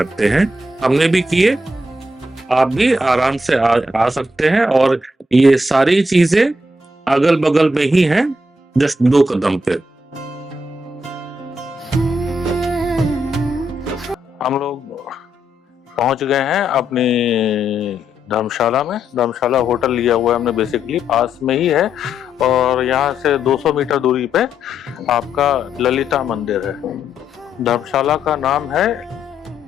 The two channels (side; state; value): both; normal; correlation 0.79